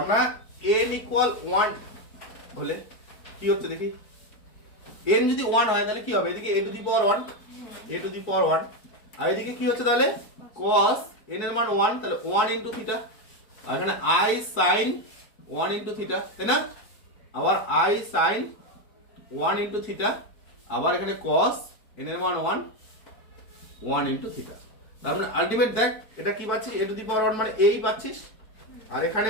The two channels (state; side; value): late; right; 4.5 ms